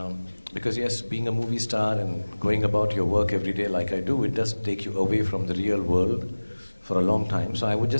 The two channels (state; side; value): inverted; both; correlation -1.00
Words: because yes, being a movie star and going about your work every day like I do, it does take you away from the real world for a long time. So I would